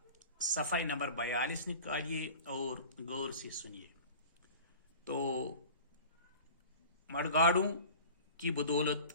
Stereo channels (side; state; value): both; inverted; correlation -0.40